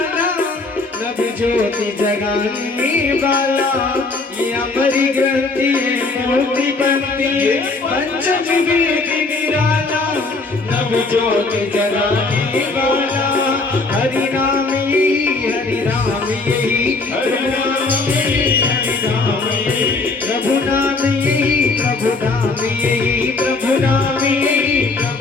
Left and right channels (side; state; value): right; quieter; 3.6 dB